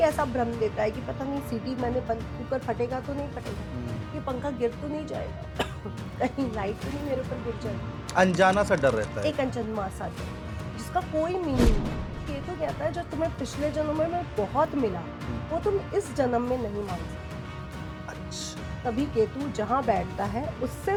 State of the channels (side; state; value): both; identical; correlation 1.00